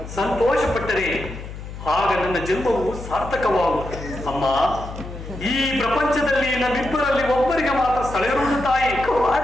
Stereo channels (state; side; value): noise; left; hum, 11 dB below the sound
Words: ಸಂತೋಷಪಟ್ಟರೆ ಆಗ ನನ್ನ ಜನ್ಮವು ಸಾರ್ಥಕವಾಗುವುದು. ಅಮ್ಮ, ಈ ಪ್ರಪಂಚದಲ್ಲಿ ನಮ್ಮಿಬ್ಬರಲ್ಲಿ ಒಬ್ಬರಿಗೆ ಮಾತ್ರ ಸ್ಥಳವಿರುವುದು ತಾಯಿ.